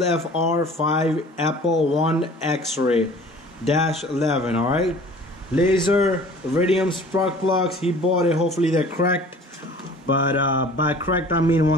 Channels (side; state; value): both; normal; correlation 0.47